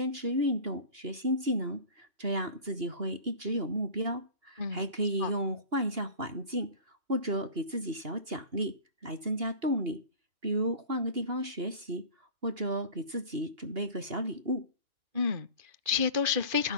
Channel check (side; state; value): left; late; 2.8 ms